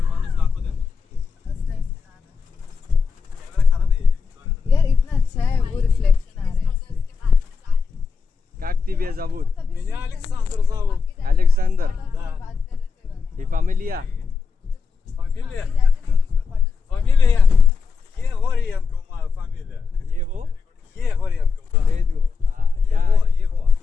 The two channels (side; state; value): right; quieter; 5.3 dB